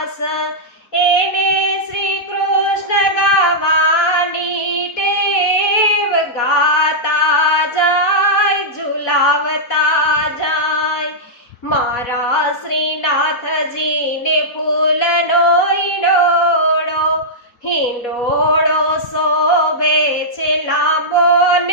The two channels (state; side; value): late; right; 4.2 ms